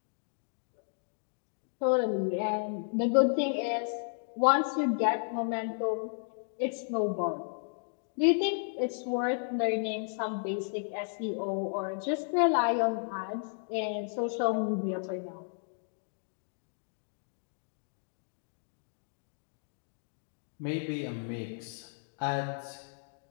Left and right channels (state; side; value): silent; right; digital silence